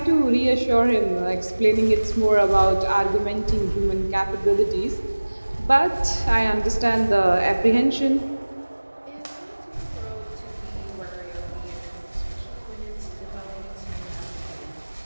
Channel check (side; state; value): both; inverted; correlation -1.00